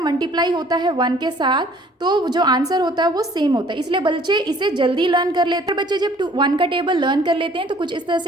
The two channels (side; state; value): both; normal; correlation 0.56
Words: होता है 1 के साथ तो जो आंसर होता है वो सेम होता है, इसलिए बच्चे इसे जल्दी लर्न कर लेते हैं। बच्चे जब 1 का टेबल लर्न कर लेते हैं तो कुछ इस तरह